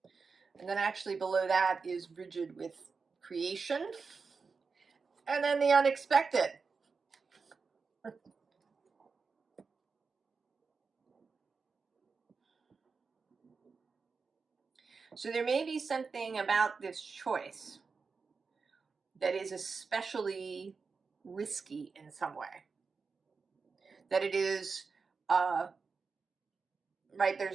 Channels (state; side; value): quieter; left; 4.9 dB